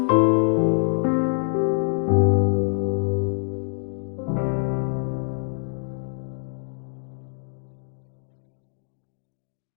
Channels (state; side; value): silent; right; digital silence